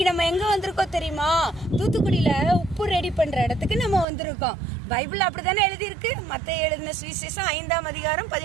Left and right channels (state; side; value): drops out; left; at 4.0 s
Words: நம்ம எங்க வந்திருக்கோம் தெரியுமா? தூத்துக்குடியில உப்பு ரெடி பண்ற இடத்துக்கு நம்ம வந்திருக்கோம். பைபிள் அப்படித்தானே எழுதியிருக்கு. மத்தேயு எழுதின சுவிசேஷம் 5ஆம் அதிகாரம்